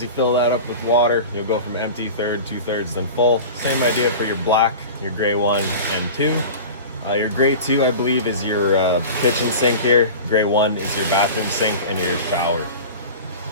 you fill that up with water, you'll go from empty, third, 2/3, then full. Same idea for your black, your gray 1 and 2. Your gray 2, I believe, is your kitchen sink here. Gray 1 is your bathroom sink and your shower.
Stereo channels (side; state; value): both; inverted; correlation -0.34